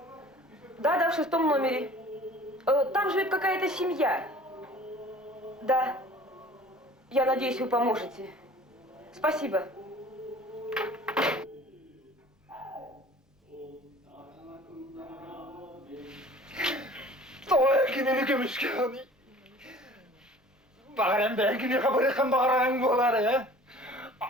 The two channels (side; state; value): both; normal; correlation 0.48